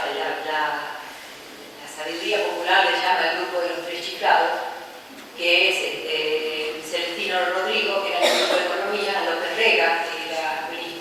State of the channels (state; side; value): identical; both; correlation 1.00